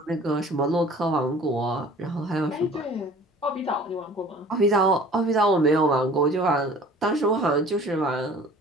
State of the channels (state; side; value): normal; both; correlation 0.47